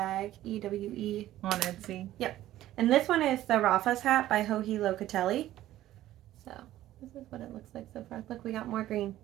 EWE. On Etsy. Yep. And this one is the Rafa's hat by Joji Locatelli. So, this is what it looks like so far. Look, we got more green.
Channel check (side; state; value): left; quieter; 14.0 dB